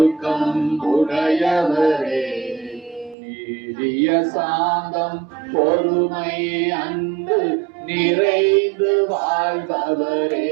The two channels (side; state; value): left; drops out; at 3.2 s